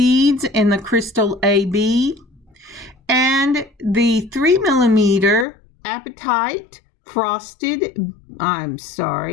in the crystal AB, and the 3mm apatite faceted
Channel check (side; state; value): right; drops out; at 5.5 s